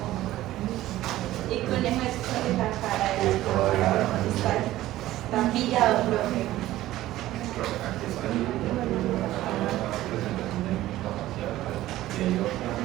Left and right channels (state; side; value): quieter; left; 15.2 dB